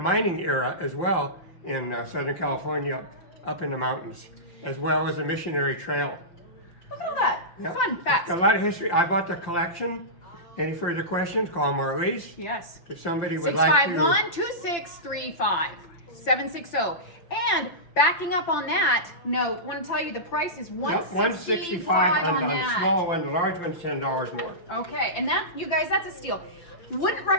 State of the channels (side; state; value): right; late; 5.9 ms